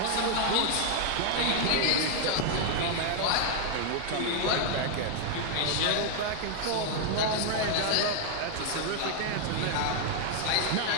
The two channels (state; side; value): different; both; correlation 0.00